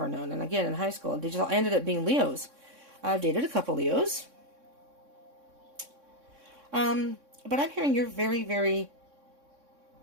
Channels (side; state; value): left; late; 3.6 ms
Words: known, and again, in high school, they just all ended up being Leos. I've dated a couple Leos. But I'm hearing you're very, very...